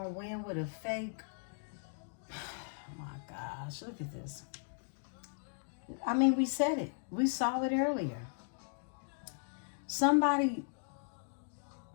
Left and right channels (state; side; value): silent; right; digital silence